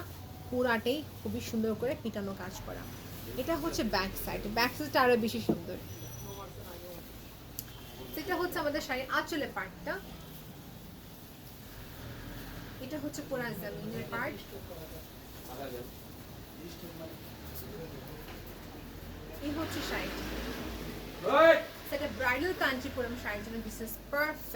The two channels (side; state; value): both; identical; correlation 1.00